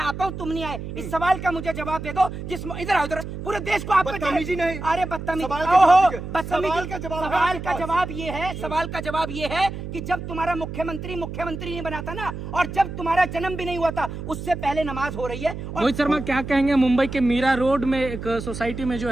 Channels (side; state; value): right; noise; hum, 8 dB below the sound